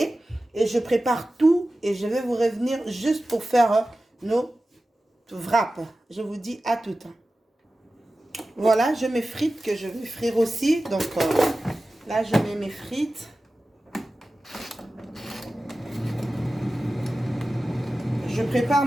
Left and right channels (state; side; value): normal; both; correlation 0.95